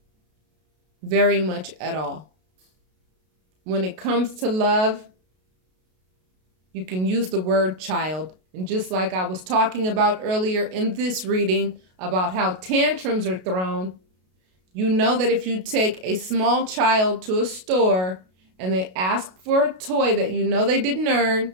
very much at all. When it comes to love, you can use the word child. And just like I was talking about earlier in this reading about how tantrums are thrown, you know that if you take a small child to a store and they ask for a toy that you know they didn't earn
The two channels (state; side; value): late; left; 32 ms